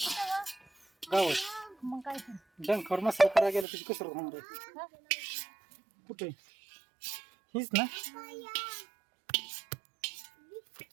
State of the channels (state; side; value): drops out; left; at 3.7 s